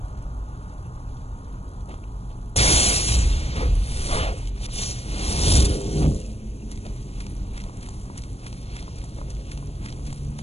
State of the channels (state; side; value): late; right; 0.30 ms